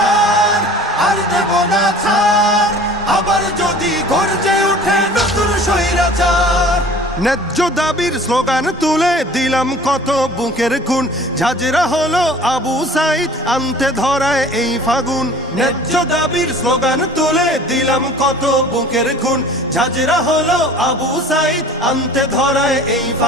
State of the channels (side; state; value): both; normal; correlation 0.46